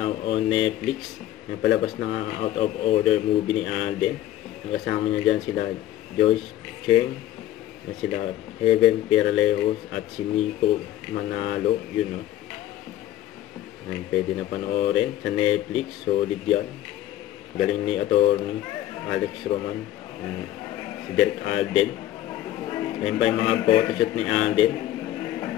on Netflix. Napalabas na nga out of order movie ni Alden. Nakasama niya dyan sila Joyce Cheng, na sila Heaven Peralejos at si Nico Manalo. Yun, no? Ayan, pwede na panoorin sa Netflix. Solid yan. Galing ni attorney Alex Roman, si Derek Alden. Ayan pa yung mga photoshoot ni Alden.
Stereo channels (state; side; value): quieter; right; 13.4 dB